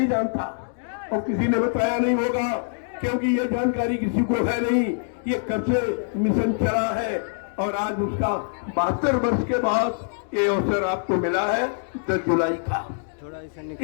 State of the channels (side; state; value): right; silent; digital silence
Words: जानता और किसी ने बताया नहीं होगा, क्योंकि ये जानकारी किसी को है नहीं। ये कब से मिशन चला है और आज उसका 72 वर्ष के बाद ये अवसर आपको मिला है 10 जुलाई का।